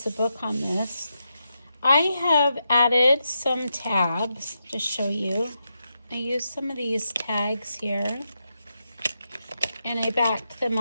the book on this. I have added some tabs to show you. I used some of these tags here, and I backed them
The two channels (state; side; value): inverted; both; correlation -0.86